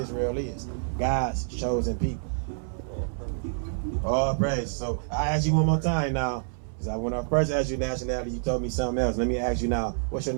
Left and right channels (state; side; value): silent; left; 60 dB below the other